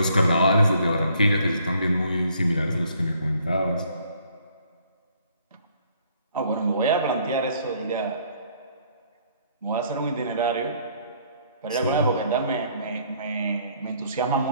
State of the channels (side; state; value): both; inverted; correlation -0.64